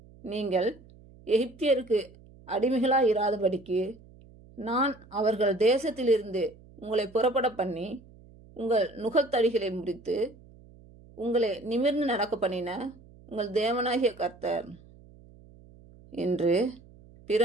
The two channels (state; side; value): noise; right; hum, 24 dB below the sound